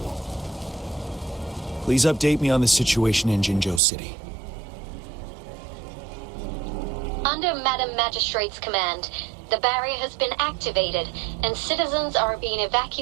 Please update me on the situation in Jinzhou City. Under Madam Magistrate's command, the barrier has been activated, and citizens are being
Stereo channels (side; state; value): left; drops out; at 3.8 s